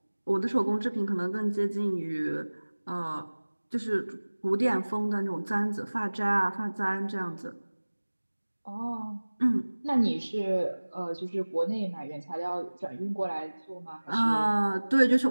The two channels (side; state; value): both; inverted; correlation -1.00